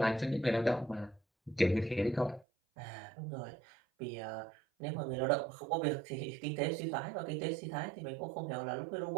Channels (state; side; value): drops out; left; at 2.5 s